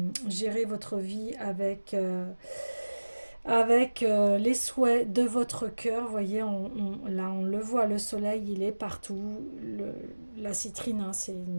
gérer votre vie avec les souhaits de votre cœur. Vous voyez, là, on le voit, le soleil, il est partout. La citrine, hein, c'est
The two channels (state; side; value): inverted; both; correlation -1.00